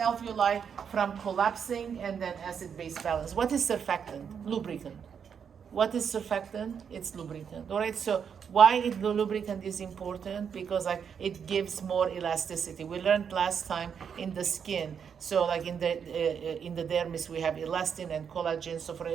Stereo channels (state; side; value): quieter; left; 7.2 dB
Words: from collapsing, and then acid-base balance. What is surfactant? Lubricant. What is surfactant? It's lubricant. All right, so why the lubricant is important? Because like it gives more elasticity. We learned last time in the skin. So like in the dermis we have elastin and collagen. So for